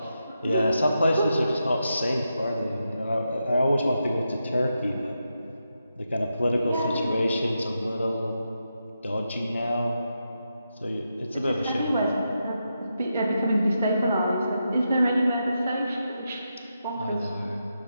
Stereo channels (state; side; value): inverted; both; correlation -0.86